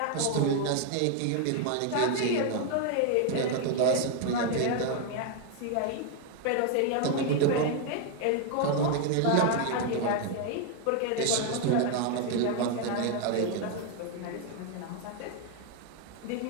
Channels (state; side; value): different; both; correlation 0.01